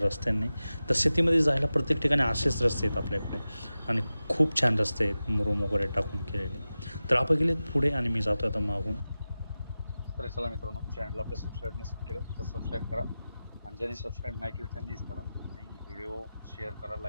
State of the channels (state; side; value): inverted; both; correlation -0.95